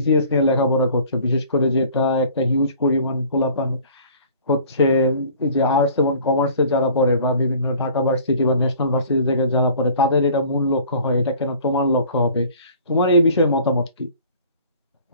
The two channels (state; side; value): inverted; both; correlation -0.50